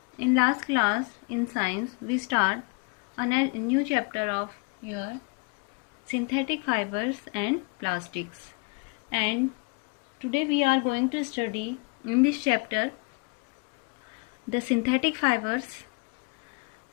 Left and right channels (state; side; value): quieter; right; 31.2 dB